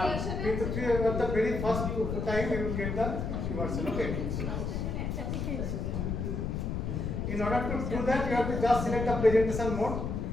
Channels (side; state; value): left; noise; rumble, 2 dB below the sound